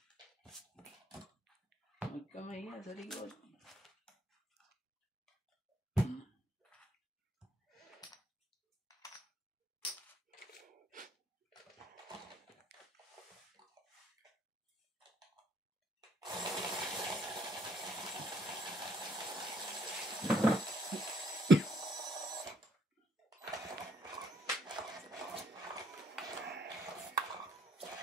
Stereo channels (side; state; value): both; normal; correlation 0.68